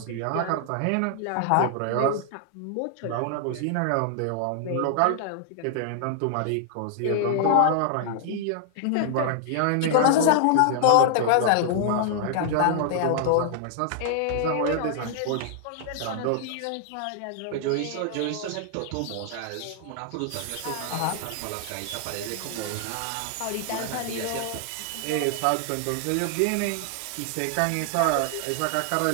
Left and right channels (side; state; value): both; different; correlation 0.00